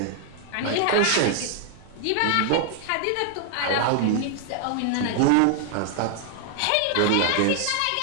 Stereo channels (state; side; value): different; both; correlation 0.00